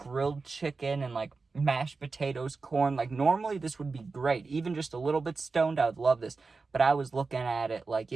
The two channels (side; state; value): left; quieter; 4.2 dB